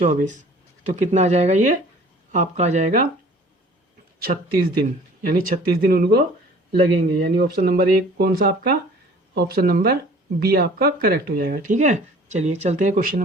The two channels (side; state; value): both; normal; correlation 0.50